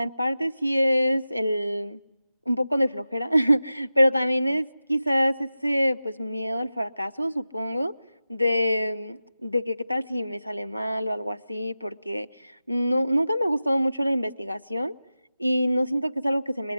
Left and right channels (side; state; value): both; inverted; correlation -0.94